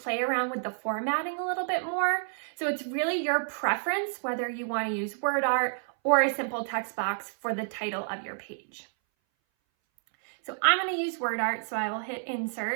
around with the formatting a little bit more. So it's really your preference whether you want to use word art or a simple text box for the title of your page. So I'm going to use word art, so I will hit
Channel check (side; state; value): left; silent; 58 dB below the other